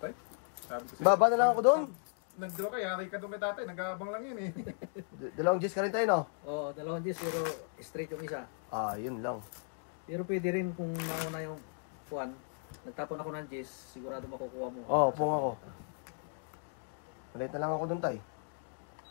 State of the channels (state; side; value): silent; right; 54 dB below the other